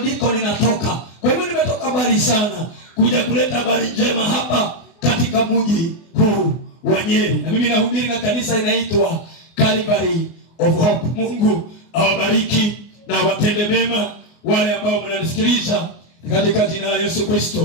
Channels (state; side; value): late; right; 24 ms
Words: ninatoka. Kwa hivyo nimetoka mbali sana kuja kuleta habari njema hapa katika mji huu wa Nyeri, na mimi nahubiri na kanisa inaitwa Calvary of Hope. Mungu awabariki na watende mema wale ambao mnanisikiliza katika jina la Yesu